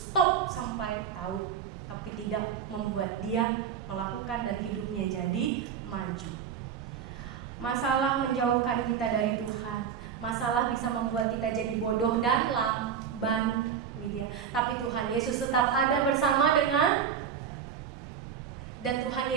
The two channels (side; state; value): left; quieter; 7.9 dB